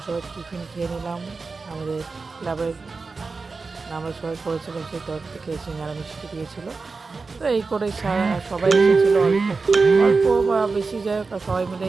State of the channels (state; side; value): quieter; left; 4.2 dB